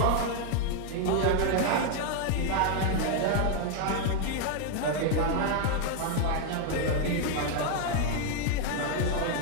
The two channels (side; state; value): both; different; correlation 0.00